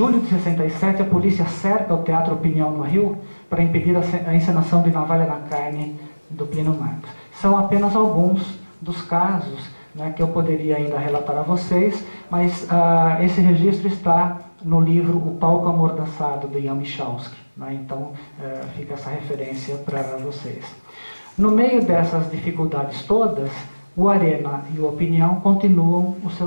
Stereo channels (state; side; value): inverted; both; correlation -1.00